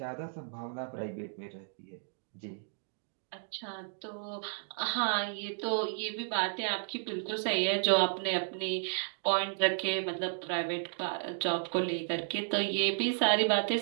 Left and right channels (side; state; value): left; silent; digital silence